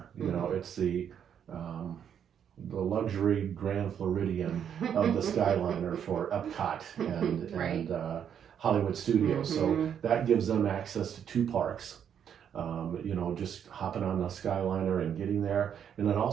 It's the luxury Grand Floridian of the Skyliner for Epcot and Right. Hollywood Studios. So that gives them access to two parks. Just hopping on the Skyliner and getting there, and it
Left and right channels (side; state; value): left; quieter; 8.6 dB